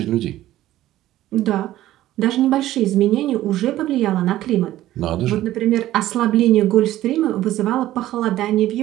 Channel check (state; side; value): quieter; left; 14.4 dB